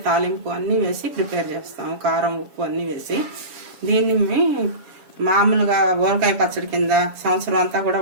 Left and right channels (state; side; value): late; left; 7.2 ms